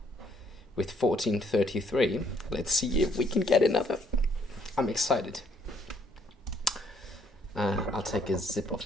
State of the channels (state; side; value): normal; both; correlation 0.67